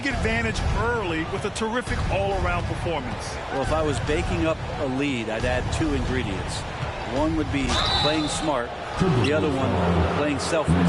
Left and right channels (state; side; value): identical; both; correlation 1.00